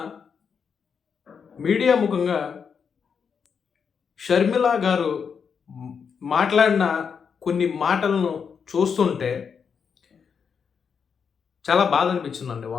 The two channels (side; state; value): right; quieter; 6.5 dB